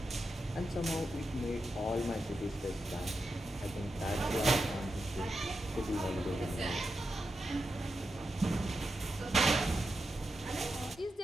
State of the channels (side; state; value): both; normal; correlation 0.88